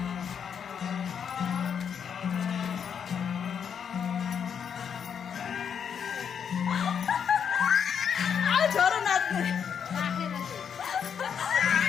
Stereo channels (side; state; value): right; quieter; 7.5 dB